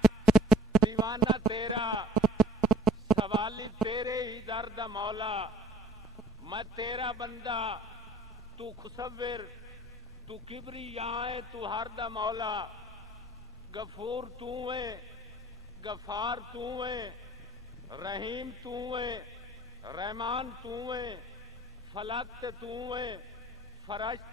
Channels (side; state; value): both; normal; correlation 0.56